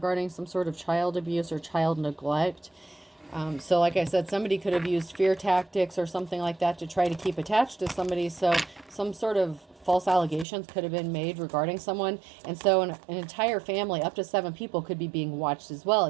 some sort of child abuse or child neglect. So like I said, somebody could have used fear tactics or something like that to try to keep attached to somebody. So some sort of false allegations could have been made regarding someone. And so an entire family, up to 7 people, could be being watched as well.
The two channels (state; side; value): drops out; left; at 10.5 s